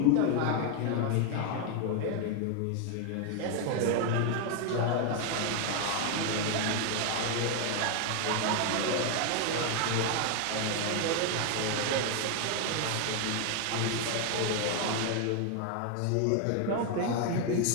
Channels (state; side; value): different; both; correlation 0.00